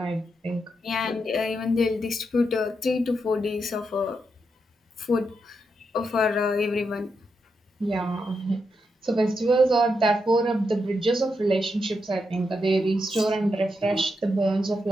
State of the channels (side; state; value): both; normal; correlation 0.83